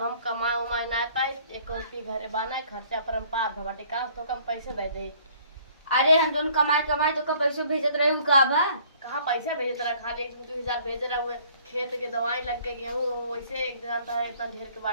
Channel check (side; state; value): both; inverted; correlation -0.57